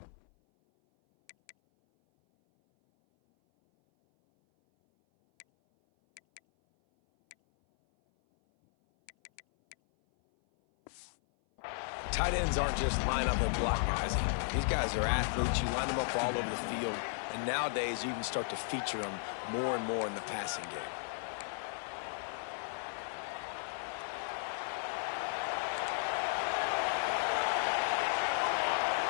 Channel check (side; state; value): right; silent; 54 dB below the other